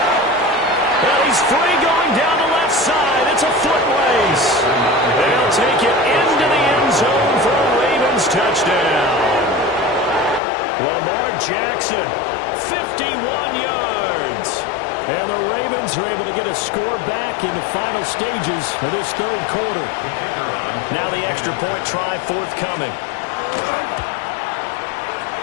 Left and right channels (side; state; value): right; drops out; at 10.4 s